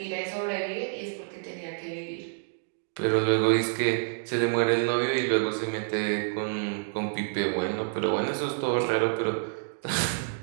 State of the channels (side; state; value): left; silent; digital silence